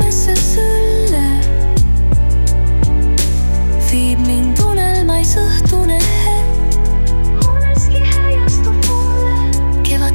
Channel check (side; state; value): both; inverted; correlation -1.00